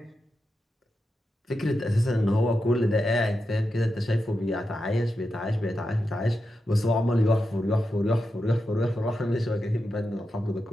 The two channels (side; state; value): both; normal; correlation 0.88